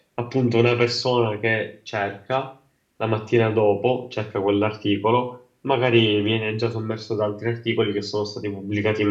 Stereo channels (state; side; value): identical; both; correlation 1.00